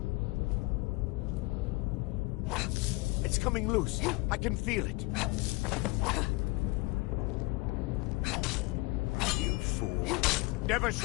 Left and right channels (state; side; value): quieter; right; 24.4 dB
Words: It's coming loose. I can feel it. You fool. Never